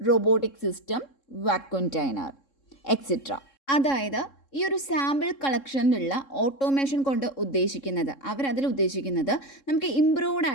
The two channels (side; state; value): right; late; 3.7 ms